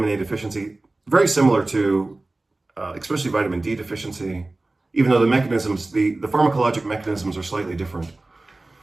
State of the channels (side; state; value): left; quieter; 3.0 dB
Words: A deficiency, very similar to especially vitamin D deficiency, even though the mechanisms, the pharmacologic mechanisms are slightly different.